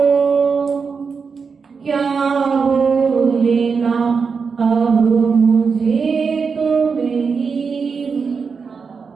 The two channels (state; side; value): quieter; left; 5.4 dB